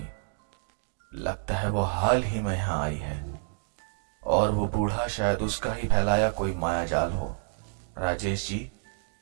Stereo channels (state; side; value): silent; left; digital silence